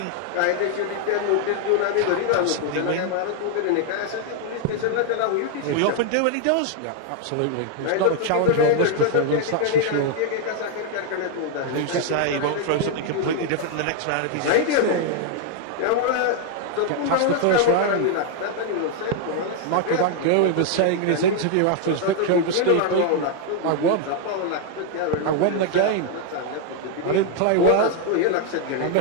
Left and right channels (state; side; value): different; both; correlation 0.00